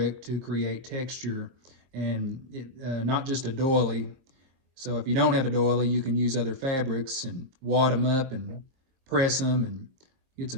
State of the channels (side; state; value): left; late; 23 ms